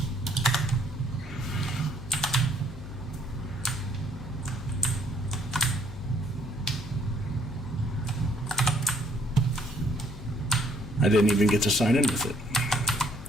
I didn't even get to sign in with it.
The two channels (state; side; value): noise; left; hum, 14 dB below the sound